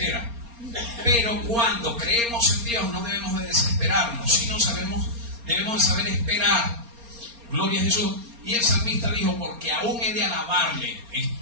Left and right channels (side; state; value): left; late; 4.3 ms